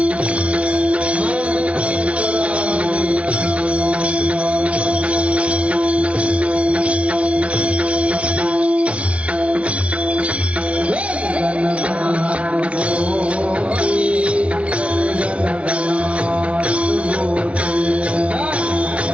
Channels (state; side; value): late; left; 0.062 ms